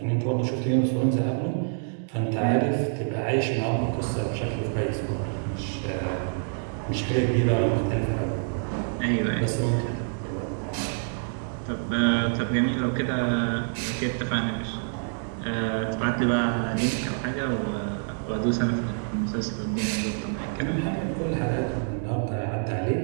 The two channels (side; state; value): left; silent; digital silence